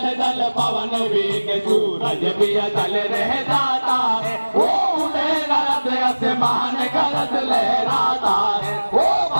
जल पवन वेग सूरज भी अतल रह जाता है। वो उड़े गरज आसमान गरज लहराता है। वो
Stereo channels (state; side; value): inverted; both; correlation -1.00